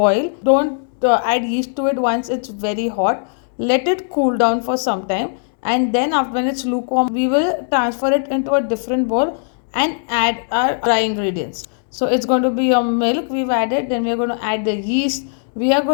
Don't add yeast to it once it's very hot. Let it cool down for some time, and then after when it's lukewarm we will transfer it into a different bowl and add our dry ingredients. So it's going to be your milk we've added, then we're going to add the yeast, we are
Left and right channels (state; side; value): silent; right; digital silence